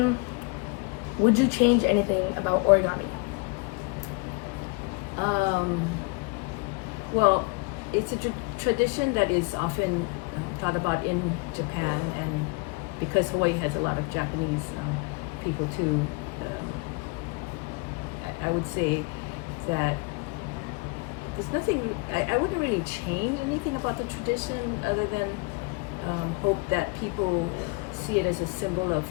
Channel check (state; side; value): quieter; right; 28.9 dB